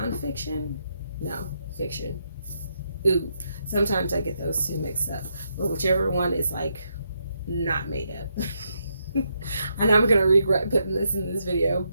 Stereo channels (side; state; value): both; inverted; correlation -0.79